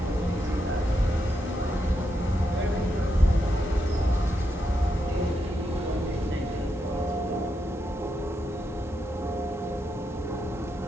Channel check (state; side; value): normal; both; correlation 0.83